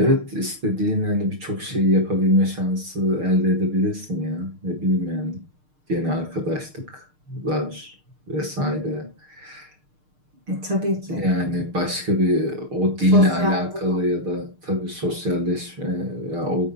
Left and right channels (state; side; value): late; left; 6.6 ms